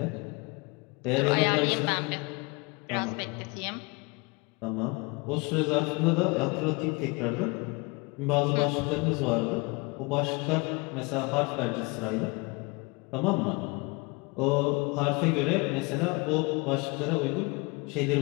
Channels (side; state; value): right; quieter; 27.6 dB